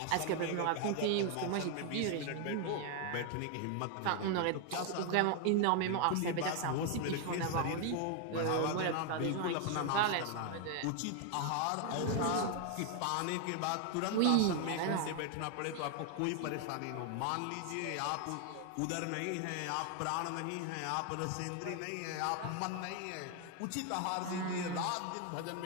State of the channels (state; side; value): different; both; correlation 0.00